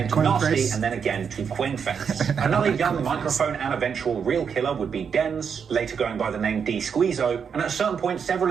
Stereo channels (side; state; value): left; quieter; 6.8 dB